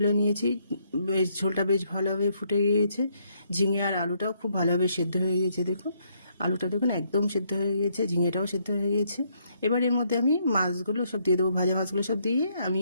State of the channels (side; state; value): both; inverted; correlation -0.72